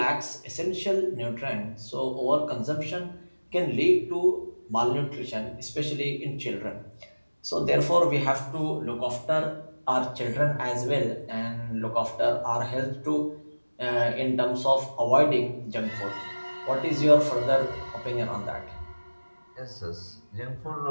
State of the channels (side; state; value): both; inverted; correlation -1.00